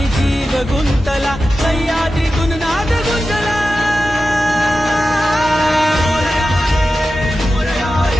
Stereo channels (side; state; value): both; normal; correlation 0.93